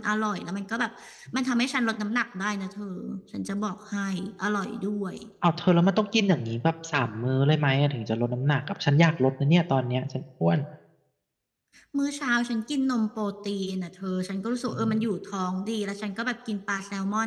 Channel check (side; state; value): both; identical; correlation 1.00